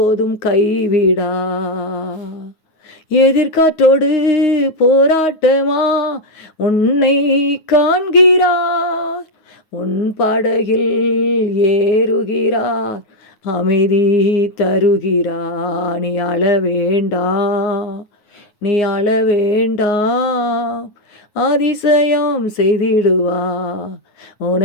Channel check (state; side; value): late; right; 9.4 ms